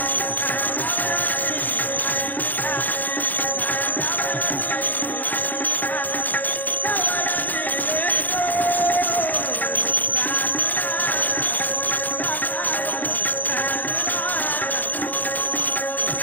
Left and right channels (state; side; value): late; right; 0.085 ms